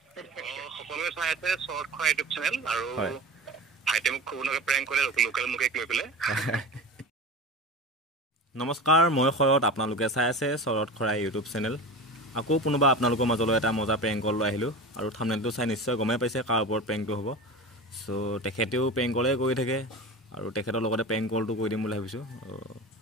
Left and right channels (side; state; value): both; normal; correlation 0.30